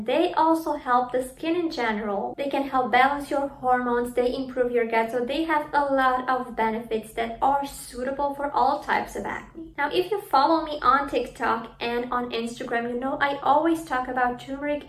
they also help the skin in general. They can help balance your hormones, they improve your gut, so they have a lot of benefits that are suitable for all types of acne. Now, if you follow me on TikTok and on Instagram, you know I always talk about turmeric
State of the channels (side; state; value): both; identical; correlation 1.00